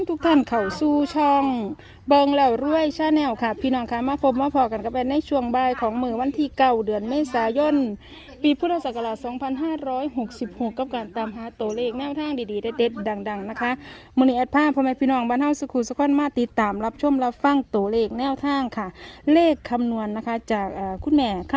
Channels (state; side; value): identical; both; correlation 1.00